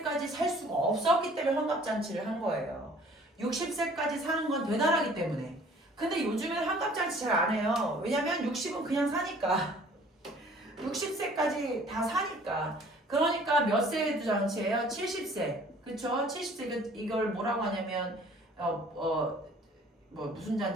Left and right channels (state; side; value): normal; both; correlation 0.53